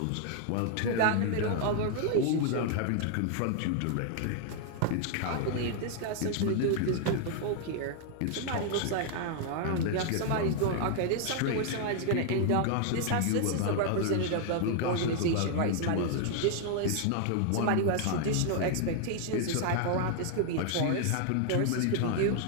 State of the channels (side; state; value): both; different; correlation 0.00